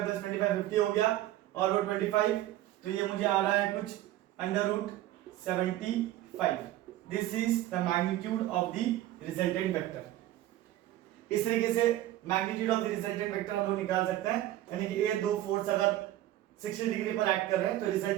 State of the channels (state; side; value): quieter; left; 14.4 dB